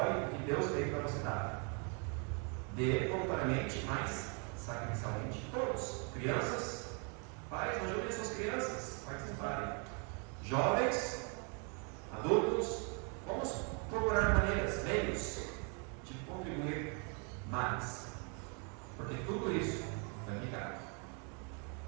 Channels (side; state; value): left; quieter; 37.1 dB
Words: o que Deus tem para você dar. Dê voluntariamente, mas sacrificialmente. Todos. Crianças, pais, ajudem suas crianças a participarem. Jovens, adultos, vamos procurar maneiras, meios de contribuir mais. Porque tudo isso vai ficar.